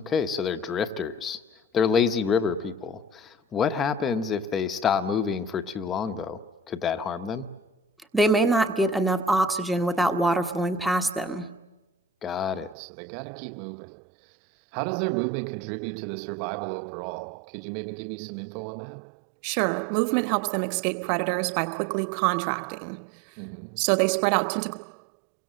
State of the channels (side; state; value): left; drops out; at 12.8 s